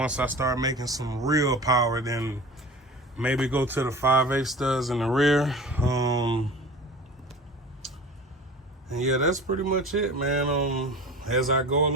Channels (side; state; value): both; normal; correlation 0.37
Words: I start making some real power, then maybe go to the 5/8 studs in the rear. And yeah, that's pretty much it, man. As I go